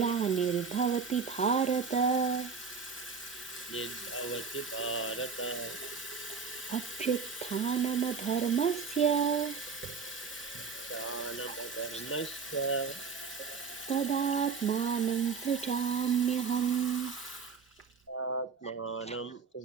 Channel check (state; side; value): quieter; left; 5.5 dB